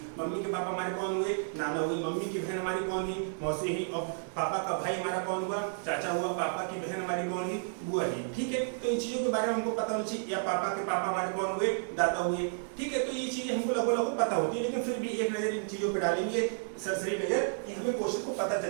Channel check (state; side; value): silent; left; digital silence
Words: मम्मी के पापा हमारे कौन हुए, नाना हुई, मम्मी की बहन हमारी कौन हुई, मौसी हुई, और पापा का भाई हमारा कौन हुआ, चाचा हुआ, पापा की बहन हमारी कौन हुई, बुआ हुई। ठीक है, तो इन चीजों के बारे में हमको पता होना चाहिए। या पापा के पापा हमारे कौन हुए, दादा हुए। ठीक है, तो ये चीजें हमको लगभग पता होती है, लेकिन फिर भी एक नजर इन चीजों पे डालेंगे, सरसरी नजर, कि हमें क्वेश्चन को पता